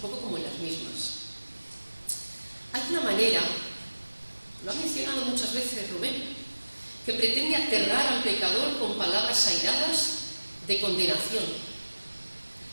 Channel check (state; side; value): inverted; both; correlation -1.00